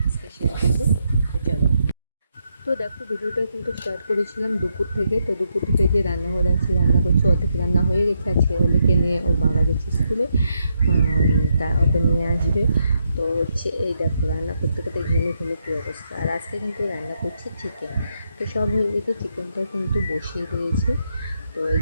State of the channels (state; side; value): inverted; both; correlation -0.80